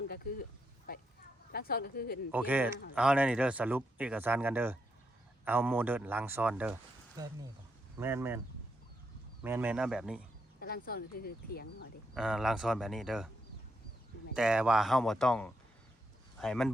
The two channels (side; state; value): both; normal; correlation 0.80